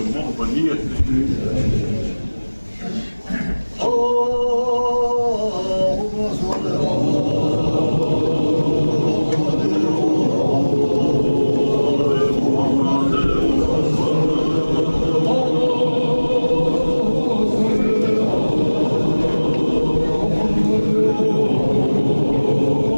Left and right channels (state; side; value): inverted; both; correlation -1.00